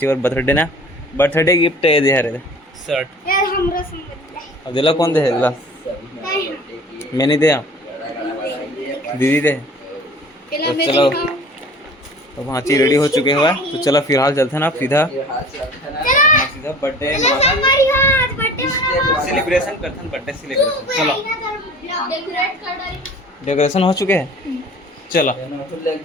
और बर्थडे गिफ्ट है दे रहे शर्ट यार हमरा संग अब दिला कौन दे दिला मैंने दे दीदी दे तो चलो तो भांची रेडी हो चुके हुआ तो चलो फिलहाल चलते हैं ना सीधा बर्थडे सेलिब्रेशन करते हैं बर्थडे सेलिब्रेशन। चलो डेकोरेशन हो चुके हैं चलो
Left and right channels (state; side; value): normal; both; correlation 0.45